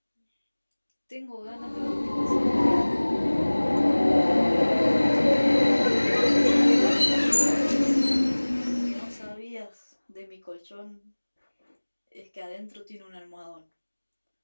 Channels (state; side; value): inverted; both; correlation -1.00